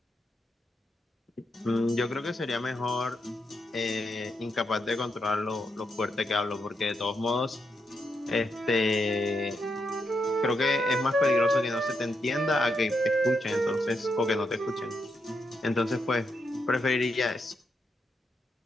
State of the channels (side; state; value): both; normal; correlation 0.82